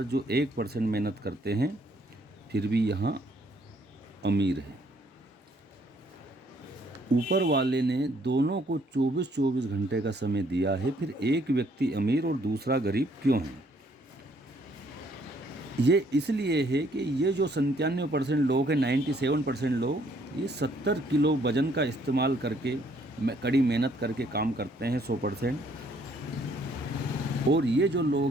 जो 1% मेहनत करते हैं फिर भी यहाँ अमीर है। ऊपर वाले ने दोनों को 24-24 घंटे का समय दिया है, फिर एक व्यक्ति अमीर और दूसरा गरीब क्यों है? ये इसलिए है कि ये जो 97% लोग हैं, 97% लोग ये 70 किलो वजन का इस्तेमाल करके कड़ी मेहनत करके काम करते हैं 100%, और ये जो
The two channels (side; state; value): both; normal; correlation 0.66